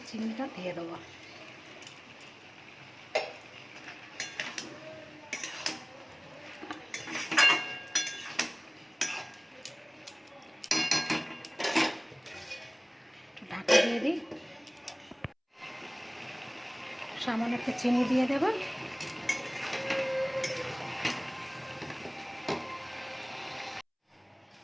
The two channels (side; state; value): both; identical; correlation 1.00